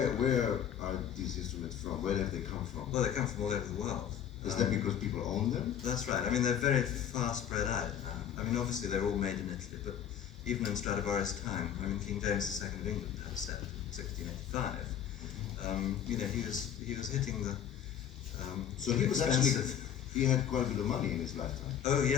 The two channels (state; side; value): quieter; right; 9.2 dB